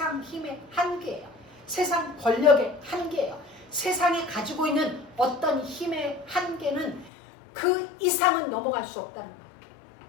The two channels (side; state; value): right; drops out; at 7.1 s